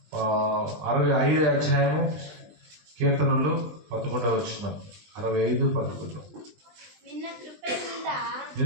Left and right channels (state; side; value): late; left; 20 ms